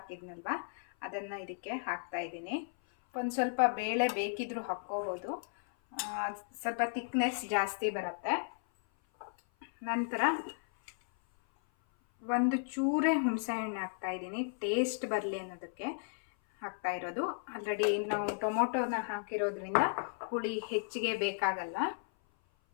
ಅದನ್ನು ಇದಕ್ಕೆ ಹಾಕ್ತಾ ಇದ್ದೀನಿ. ಒಂದು ಸ್ವಲ್ಪ ಬೇಳೆ ಬೇಕಿದ್ರೂ ಹಾಕ್ಕೋಬೋದು, ಸ್ವಲ್ಪ ಥಿಕ್ನೆಸ್ ಜಾಸ್ತಿ ಬರುತ್ತೆ. ನಂತರ ಒಂದು ಚೂರೇ ಹುಣಸೆಹಣ್ಣು ಹಾಕ್ತಾ ಇದ್ದೀನಿ, ಟೇಸ್ಟ್ ಬರಲಿ ಅನ್ನೋದಕ್ಕೆ ಹಾಕ್ತಾ ಇರೋದು. ಆಲ್ರೆಡಿ ನಾವು ಟೊಮೊಟೊನ ಹಾಕಿರೋದ್ರಿಂದ ಹುಳಿ ಹೆಚ್ಚಿಗೆ ಬೇಕಾಗಲ್ಲ.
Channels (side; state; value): right; silent; 55 dB below the other